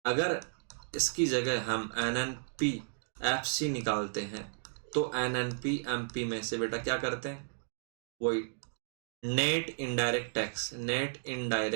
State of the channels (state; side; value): silent; left; digital silence